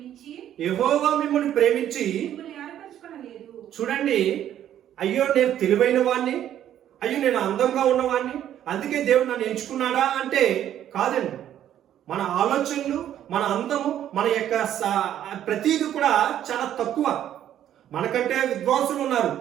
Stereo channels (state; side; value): quieter; left; 11.0 dB